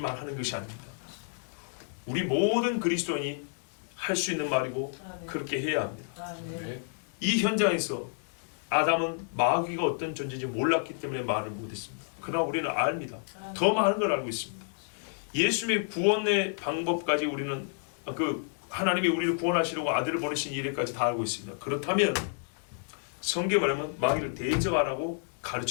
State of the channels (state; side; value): silent; right; digital silence